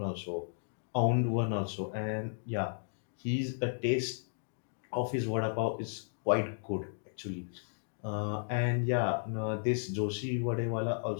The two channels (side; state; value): right; silent; digital silence